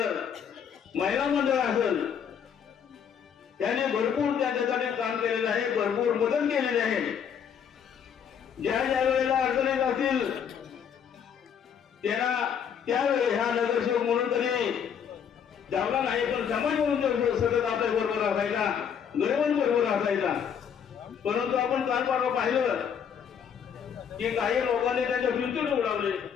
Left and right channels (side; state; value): right; quieter; 7.8 dB